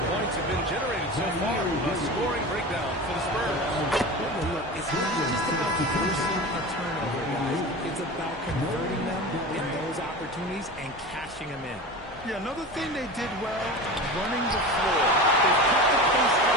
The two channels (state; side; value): normal; both; correlation 0.30